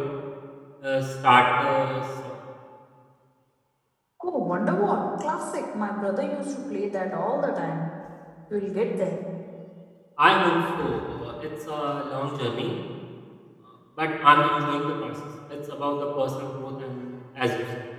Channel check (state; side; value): identical; both; correlation 1.00